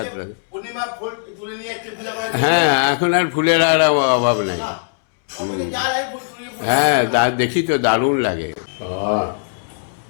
হ্যাঁ, এখন আর ফুলের আর অভাব নাই। হ্যাঁ, দেখি তো দারুণ লাগে।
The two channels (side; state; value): right; silent; 66 dB below the other